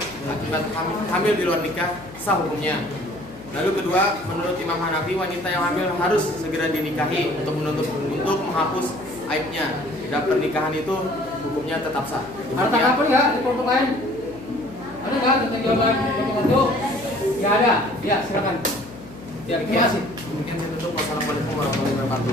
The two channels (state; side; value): noise; left; hum, 17 dB below the sound